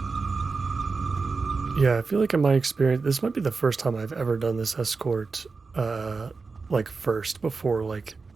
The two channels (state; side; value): quieter; left; 4.4 dB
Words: Yeah, I feel like in my experience, this might be the first time I've ever done this escort, like first before like